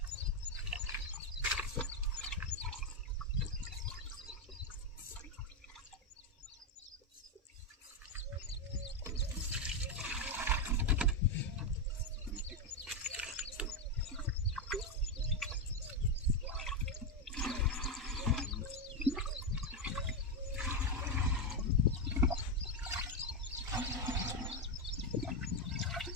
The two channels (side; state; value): both; normal; correlation 0.06